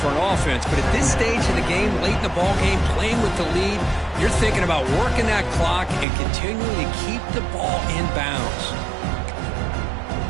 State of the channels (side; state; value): left; drops out; at 6.1 s